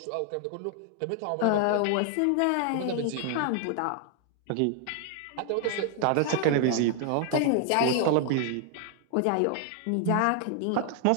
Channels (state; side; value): different; both; correlation 0.00